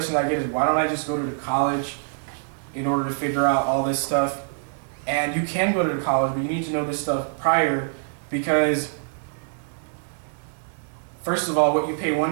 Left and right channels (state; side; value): silent; left; digital silence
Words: I get is, why don't I just go to the college in order to figure out all this stuff? And you can go to the college, but you need to know this stuff prior, because first of all, what you pay